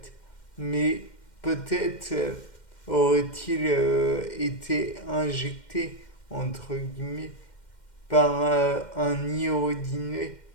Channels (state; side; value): late; right; 2.1 ms